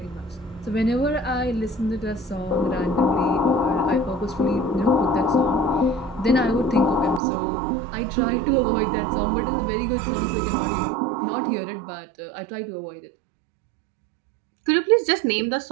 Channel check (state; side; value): drops out; left; at 7.2 s